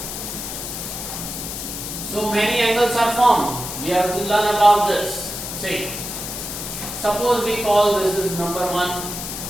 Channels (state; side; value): noise; left; hiss, 6 dB below the sound